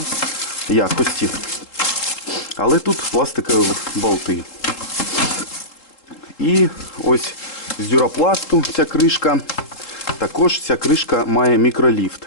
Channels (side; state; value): right; late; 3.7 ms